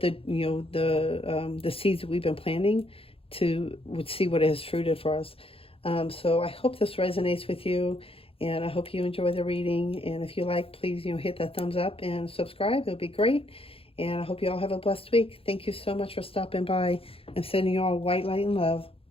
the seeds that we've been planting would see what it has fruited for us. So I hope this resonates with you, and I hope you enjoy the reading. And if you like, please, hit that thumbs up and subscribe. It would be great. And I hope you all have a blessed week. Thank you so much for stopping by. I'm sending you all white light and love.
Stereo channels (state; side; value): late; right; 0.27 ms